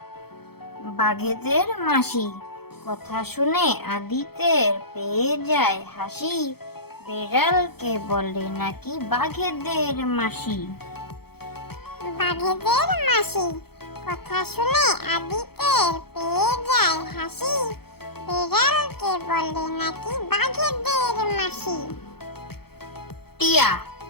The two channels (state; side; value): late; right; 0.96 ms